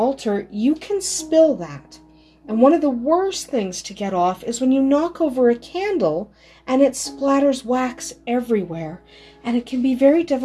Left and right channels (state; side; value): identical; both; correlation 1.00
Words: you can spill that. And one of the worst things to get off is when you knock over a candle and it splatters wax everywhere. And it can be very